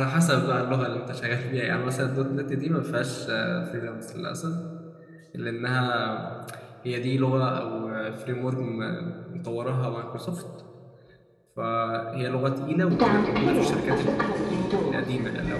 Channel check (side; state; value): both; identical; correlation 1.00